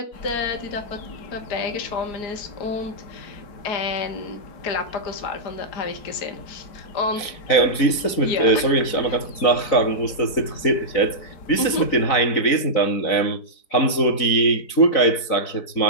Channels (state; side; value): late; right; 4.0 ms